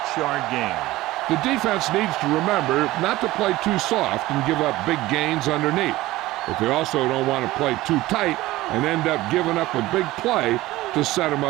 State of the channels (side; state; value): left; quieter; 17.6 dB